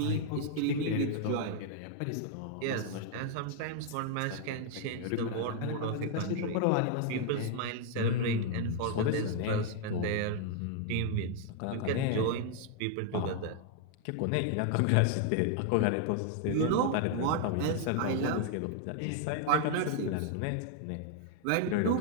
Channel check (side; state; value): both; different; correlation 0.00